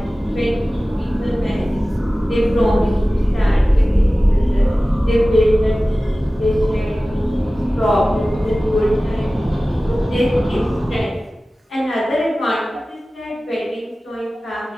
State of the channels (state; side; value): normal; both; correlation 0.97